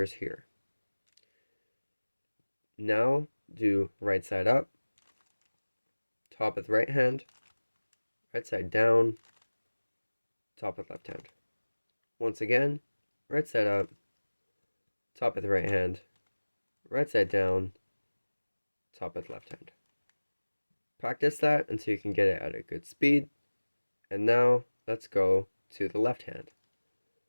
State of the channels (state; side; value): inverted; both; correlation -1.00